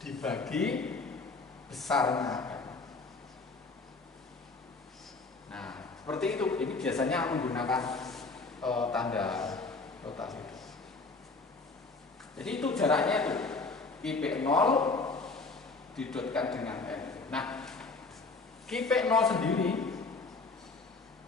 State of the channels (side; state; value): right; quieter; 3.9 dB